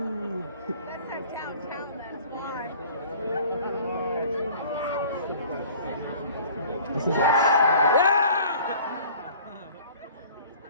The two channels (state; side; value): inverted; both; correlation -0.47